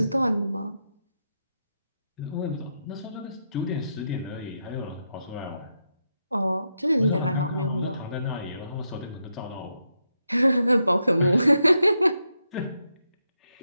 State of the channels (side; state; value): both; inverted; correlation -0.83